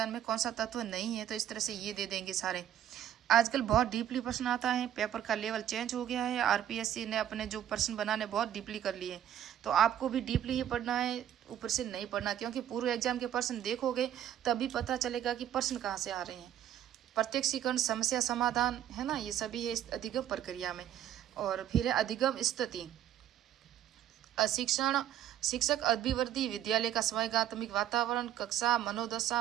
में कौन सा तत्व नहीं है, तो इस तरह से ये दे देंगे सारे। आजकल बहुत डीपली प्रश्न आता है, पेपर का लेवल चेंज हो गया है, आरपीएससी ने अपने जो प्रश्न बनाने बहुत डीपली कर लिए, तो आपको भी डीपली ही पढ़ना है, ऊपर से नहीं पढ़ना, क्योंकि पूर्व एग्जाम के प्रश्न देखोगे तभी पता चलेगा कि प्रश्न कहाँ से आ रहे हैं। प्रत्यक्षीकरण, समस्या समाधान, है ना, ये सभी है इस अधिगम प्रक्रिया में। और फिर है अधिगम स्थिति, शिक्षण, शिक्षक अभिवृद्धि, विद्यालय का स्वैगात्मिक वातावरण, कक्षा, मनोदशा,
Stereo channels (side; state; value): left; quieter; 11.0 dB